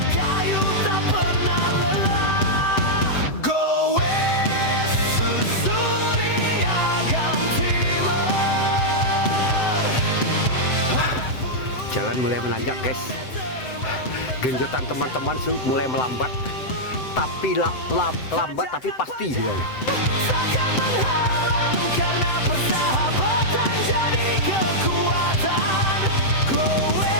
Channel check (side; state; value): right; late; 7.8 ms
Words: kayu tak pernah lelah. Jalan mulai menanjak guys. Genjotan teman-teman mulai melambat, tapi lambat tapi pasti juga. Takkan menghalang karena persahabatan jadi kekuatan. Go